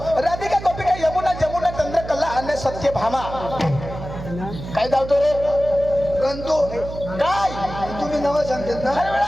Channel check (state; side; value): noise; right; hum, 10 dB below the sound